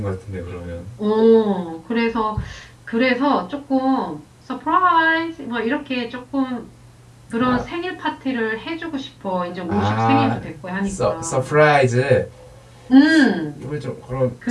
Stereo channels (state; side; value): identical; both; correlation 1.00